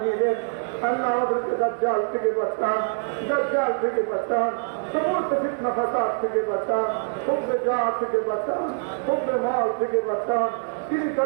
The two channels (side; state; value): left; silent; digital silence